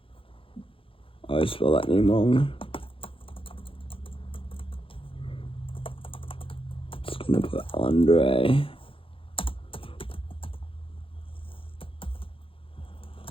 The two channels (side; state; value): right; late; 0.26 ms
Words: I spelled that name wrong. Just gonna put Andre.